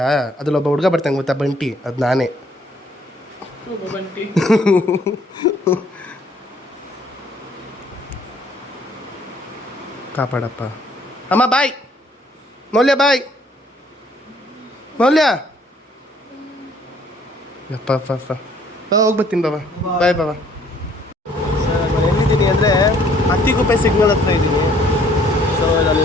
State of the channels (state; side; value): normal; both; correlation 0.62